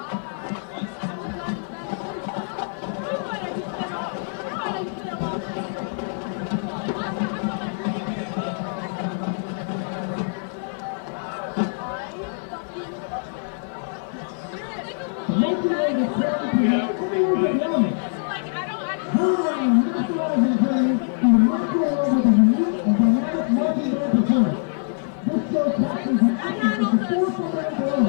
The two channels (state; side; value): silent; right; 62 dB below the other